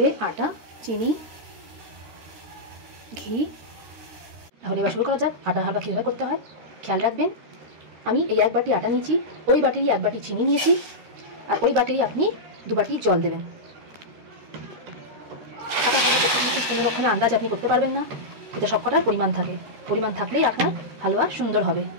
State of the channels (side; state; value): left; late; 13 ms